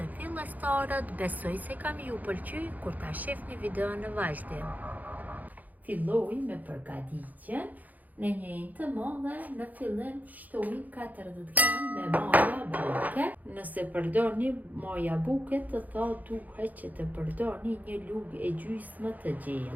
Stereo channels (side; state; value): left; late; 0.081 ms